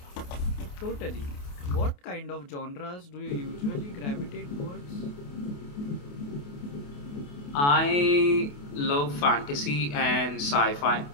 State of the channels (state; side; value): late; right; 28 ms